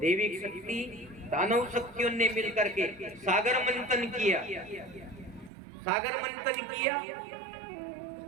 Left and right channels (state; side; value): drops out; left; at 5.5 s